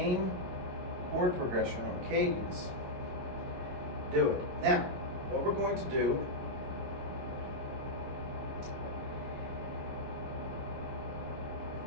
chord progression or cadence, do it. Now, what we're going to do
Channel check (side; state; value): left; late; 22 ms